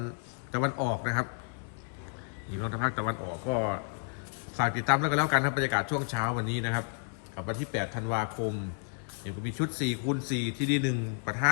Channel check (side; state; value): right; silent; 57 dB below the other